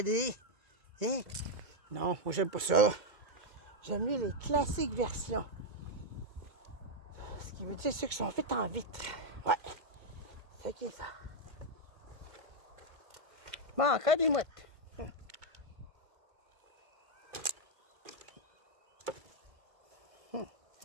Hein? Non, moi, j'aime pas ça. J'aime mieux les classiques versions. Ce qui veut dire ceux qui sont faits en vitre. Ouais. C'est ok, ça. Bon, encore des mouettes.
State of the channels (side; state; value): left; late; 2.2 ms